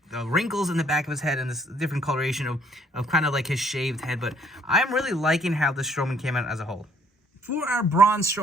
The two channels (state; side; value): normal; both; correlation 0.63